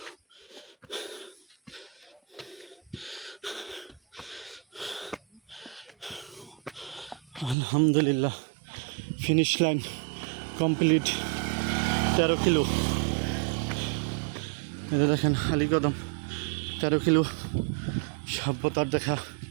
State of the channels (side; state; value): left; drops out; at 7.6 s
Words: আলহামদুলিল্লাহ। Finish line complete, 13 kilo. এটা দেখেন আলী কদম, 13 কিলো সভ্যতার দেখা,